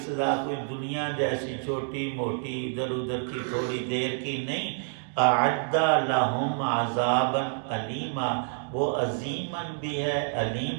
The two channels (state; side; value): silent; left; digital silence